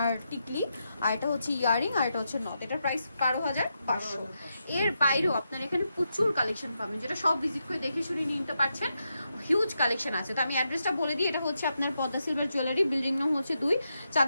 টিকলি, আর এটা হচ্ছে ইয়ারিং, আর এটা হচ্ছে নথ। এটার প্রাইস 12,500। এর বাইরেও আপনার এখানে প্রচুর কালেকশন পাবেন, যেটা সব ভিজিট করে দেখে শুনে নিতে পারছেন। হিউজ কালেকশন আছে। তো আমি অ্যাড্রেসটা বলে দিই, এটা হচ্ছে আপনার পদ্মা সিলভার জুয়েলারি, বিল্ডিং নাম হচ্ছে 2,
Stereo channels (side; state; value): both; inverted; correlation -0.85